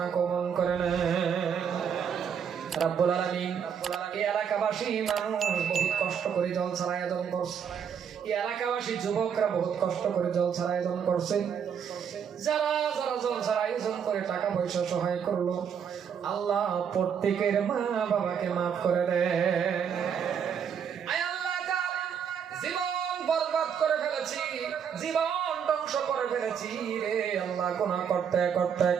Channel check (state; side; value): quieter; left; 7.6 dB